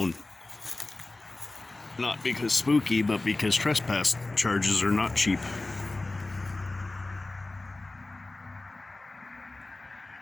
Not because spooky, but because trespass charges are not cheap.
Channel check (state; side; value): quieter; right; 3.1 dB